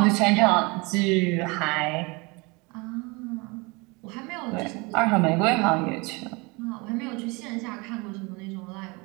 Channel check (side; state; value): left; quieter; 27.2 dB